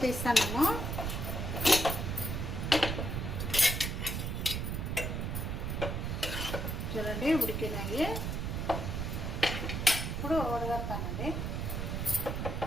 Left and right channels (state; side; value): noise; right; rumble, 2 dB below the sound